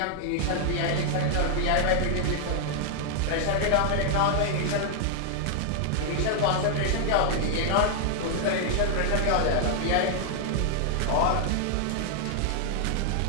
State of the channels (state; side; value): different; both; correlation -0.01